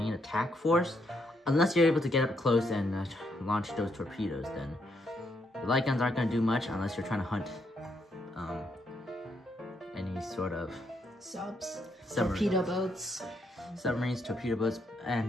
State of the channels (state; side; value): normal; both; correlation 0.76